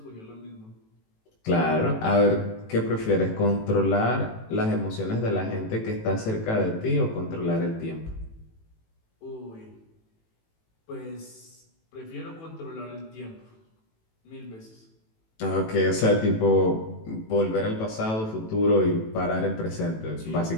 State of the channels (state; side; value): late; right; 18 ms